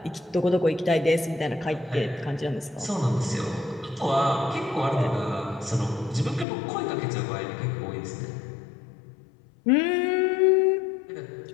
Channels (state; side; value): drops out; right; at 6.5 s